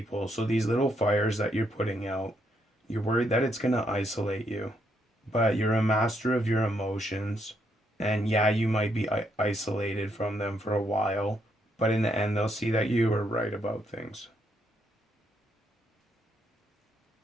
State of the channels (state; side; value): normal; both; correlation 0.75